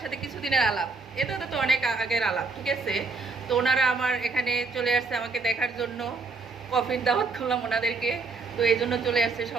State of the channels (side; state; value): left; quieter; 4.0 dB